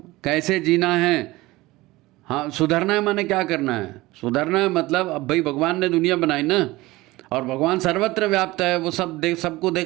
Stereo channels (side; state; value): left; quieter; 19.7 dB